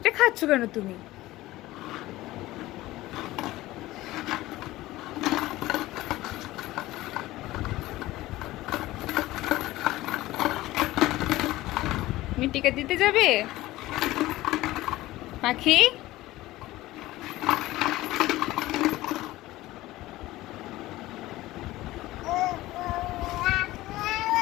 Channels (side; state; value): right; quieter; 17.3 dB